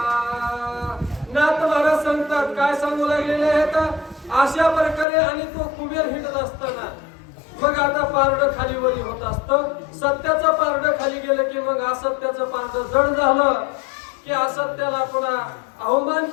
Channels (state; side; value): drops out; right; at 5.1 s